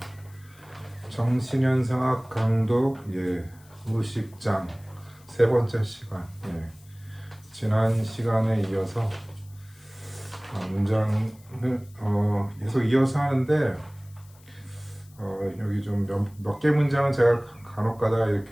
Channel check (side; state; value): left; noise; hiss, 27 dB below the sound